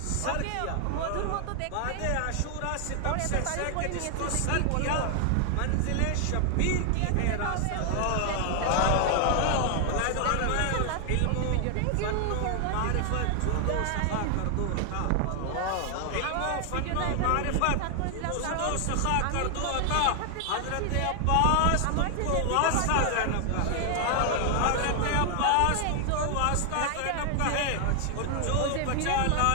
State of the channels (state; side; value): different; both; correlation 0.00